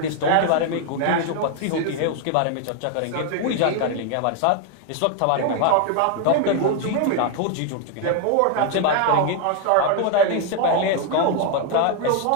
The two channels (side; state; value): both; different; correlation 0.00